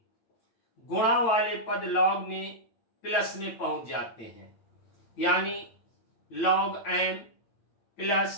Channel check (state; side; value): late; right; 9.0 ms